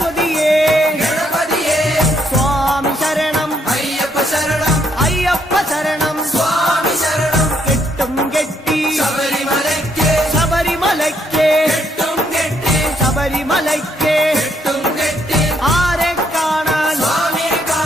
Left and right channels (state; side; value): normal; both; correlation 0.73